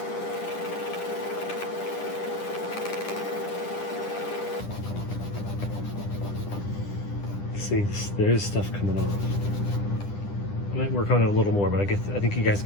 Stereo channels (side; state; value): right; late; 10 ms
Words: See, there's stuff coming off. I might work on it a little more, but I think you guys